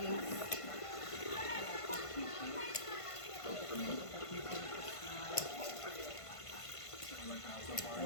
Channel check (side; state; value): right; late; 1.5 ms